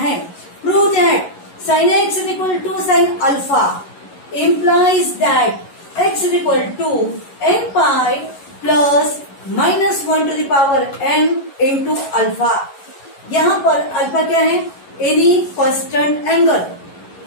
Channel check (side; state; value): right; late; 11 ms